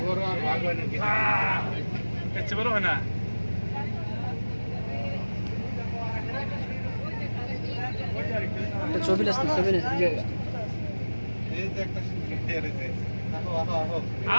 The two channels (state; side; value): inverted; both; correlation -1.00